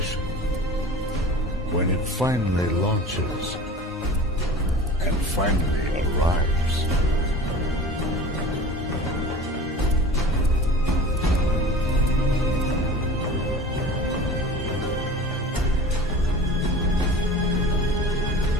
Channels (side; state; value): both; normal; correlation 0.38